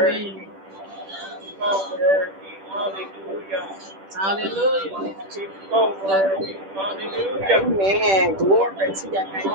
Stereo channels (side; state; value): left; late; 10 ms